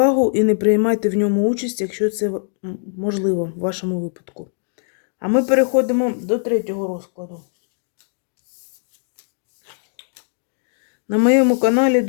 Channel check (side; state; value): right; silent; digital silence